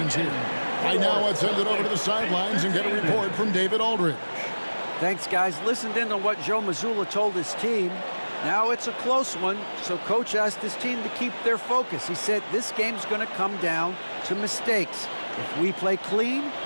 here. Right now, let's send it over to the sidelines and get a report from David Aldridge. Thanks, guys. Listened in on what Joe Mazzulla told his team. Now it's a close one, so coach asked his team to keep their focus. He said this game's going to come down to mistakes. If we play clean,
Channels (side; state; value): both; inverted; correlation -1.00